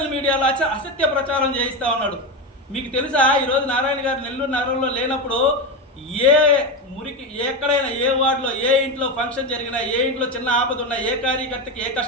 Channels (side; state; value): both; normal; correlation 0.15